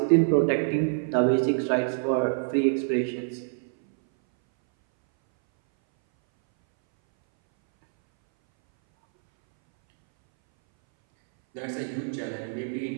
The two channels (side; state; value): left; silent; 60 dB below the other